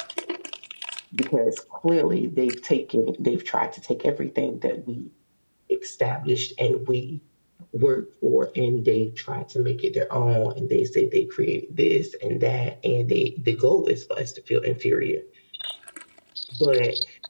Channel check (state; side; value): inverted; both; correlation -1.00